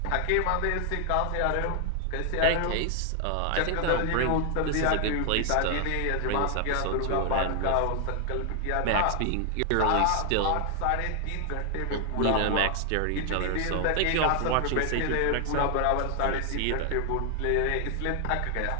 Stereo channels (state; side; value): different; both; correlation 0.00